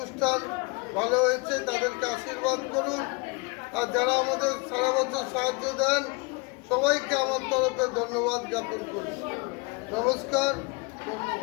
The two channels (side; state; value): right; quieter; 29.0 dB